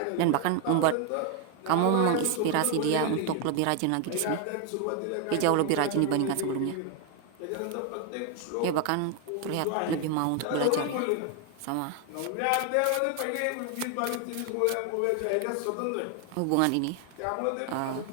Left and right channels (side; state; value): both; different; correlation 0.01